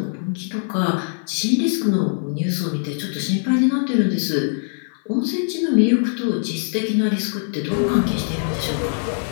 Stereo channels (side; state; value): right; silent; 56 dB below the other